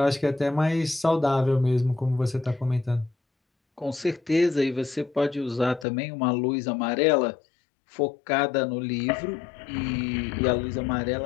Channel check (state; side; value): drops out; right; at 5.9 s